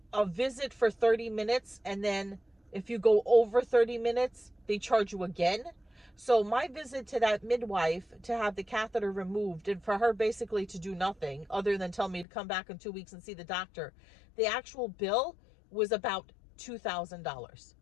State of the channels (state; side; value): drops out; right; at 12.2 s